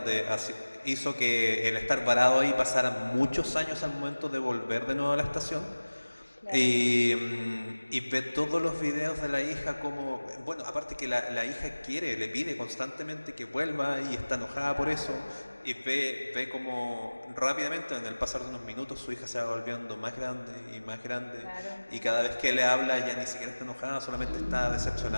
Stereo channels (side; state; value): both; inverted; correlation -1.00